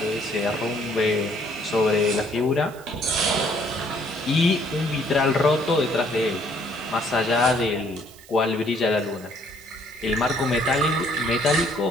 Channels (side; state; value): right; noise; hiss, 22 dB below the sound